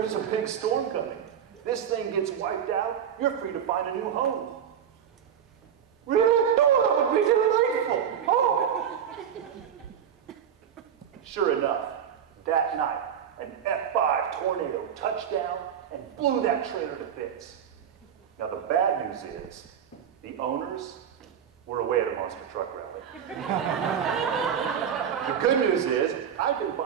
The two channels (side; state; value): left; quieter; 8.5 dB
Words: a big storm coming. This thing gets wiped out, you're free to find a new home. Really? Oh, that would be delightful! Oh! Sure enough, that night, an F5 tornado touched down and blew that trailer to bits. Now the bad news is, the owners were away at a monster truck rally. The good news is, I can